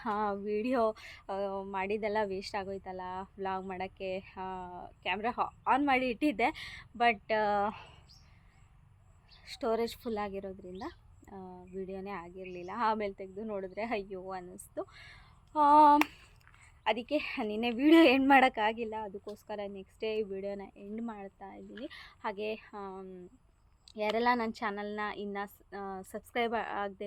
ವೀಡಿಯೋ ಮಾಡಿದ್ದೆಲ್ಲ ವೇಸ್ಟ್ ಆಗೋಯ್ತಲ್ಲ. ವ್ಲಾಗ್ ಮಾಡೋಕ್ಕೆ ಕ್ಯಾಮ್ರಾ ಆನ್ ಮಾಡಿ ಇಟ್ಟಿದ್ದೆ, ಬಟ್ ಸ್ಟೋರೇಜ್ ಫುಲ್ ಆಗಿರೋದ್ರಿಂದ ವೀಡಿಯೋನೇ ಆಗಿರಲಿಲ್ಲ. ಆಮೇಲೆ ತೆಗೆದು ನೋಡಿದ್ರೆ ಅಯ್ಯೋ ಅನ್ನಿಸ್ತು. ಅದಕ್ಕೆ ನಿನ್ನೆ ವೀಡಿಯೋ ಎಂಡ್ ಮಾಡೋಕ್ಕಾಗಿಲ್ಲ. ಅದಕ್ಕೋಸ್ಕರ ನೆಕ್ಸ್ಟ್ ಡೇ ಈ ವಿಡಿಯೋನ ಎಂಡ್ ಮಾಡ್ತಾ ಇದ್ದೀನಿ. ಹಾಗೆ ಯಾರೆಲ್ಲ ನನ್ನ ಚಾನಲ್ನ ಇನ್ನೂ ಸಬ್ಸ್ಕ್ರೈಬ್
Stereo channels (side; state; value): both; identical; correlation 1.00